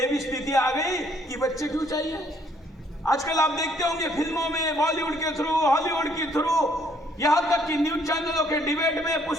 भी स्थिति आ गई कि बच्चे क्यों चाहिए। आजकल आप देखते होंगे फिल्मों में, बॉलीवुड के थ्रू, हॉलीवुड के थ्रू, यहां तक कि न्यूज चैनलों के डिबेट में,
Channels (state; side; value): normal; both; correlation 0.65